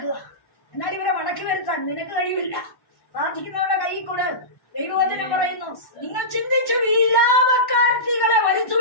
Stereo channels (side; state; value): right; late; 1.1 ms